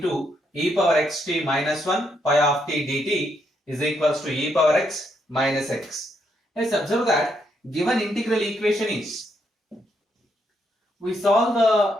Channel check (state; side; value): normal; both; correlation 0.76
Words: e power xt minus 1 pi of t dt is equals to e power x minus x. Let's observe that given integral equation is we solve